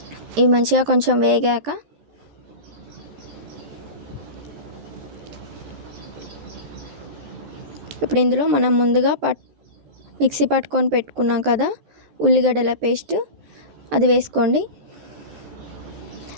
ఇవి మంచిగా కొంచెం వేగాక ఇప్పుడు ఇందులో మనం ముందుగా మిక్సీ పట్టుకొని పెట్టుకున్నాం కదా ఉల్లిగడ్డల పేస్ట్, అది వేసుకోండి.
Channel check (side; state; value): left; late; 14 ms